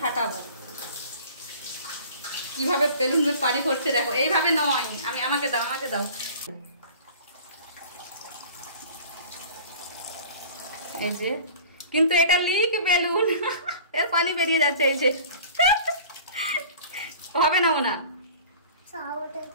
ফাটাবো। কিভাবে বেলুন পানি ভরছে দেখো, এইভাবে নয়। আমাকে দাও, আমাকে দাও। এই যে, কিন্তু এটা লিক বেলুন, এর পানি বেরিয়ে যাচ্ছে। এই যে হবে না ওনা,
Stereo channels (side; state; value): both; inverted; correlation -0.44